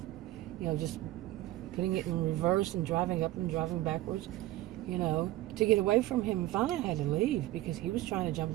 just putting it in reverse and driving up and driving backwards, to get away from him. And finally I had to leave because he was trying to jump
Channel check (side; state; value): left; quieter; 16.1 dB